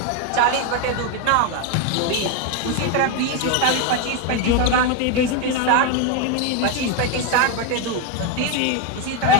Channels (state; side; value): different; both; correlation 0.02